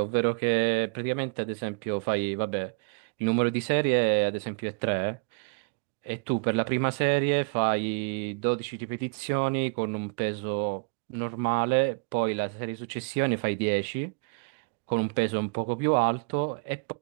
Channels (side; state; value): left; quieter; 35.4 dB